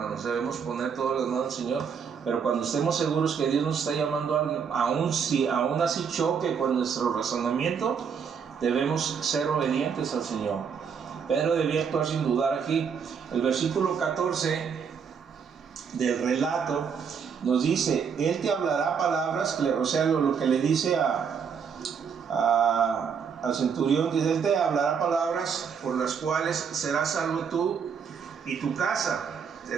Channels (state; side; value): quieter; left; 6.7 dB